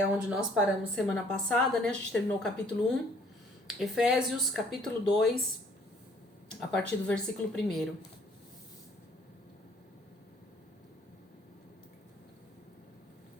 onde nós paramos semana passada, né? A gente terminou o capítulo 1. Efésios, capítulo 2, a partir do versículo 1.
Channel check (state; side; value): normal; both; correlation 0.60